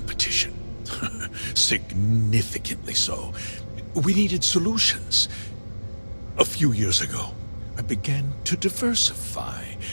Significantly so. We needed solutions. A few years ago, I began to diversify.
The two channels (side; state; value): both; inverted; correlation -1.00